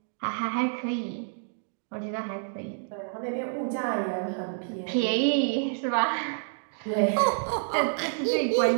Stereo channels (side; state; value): left; silent; digital silence